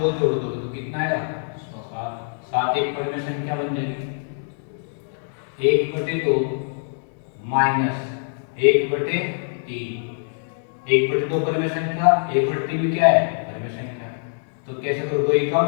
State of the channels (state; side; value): silent; right; digital silence